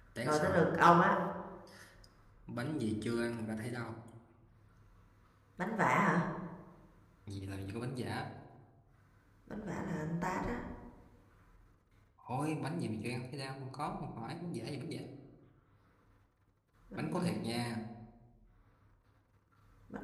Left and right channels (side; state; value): both; identical; correlation 1.00